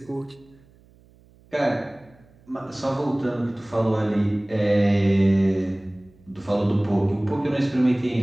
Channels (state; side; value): noise; right; hum, 29 dB below the sound